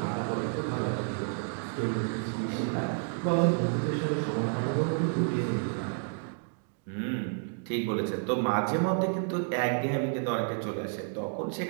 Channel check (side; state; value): left; silent; 57 dB below the other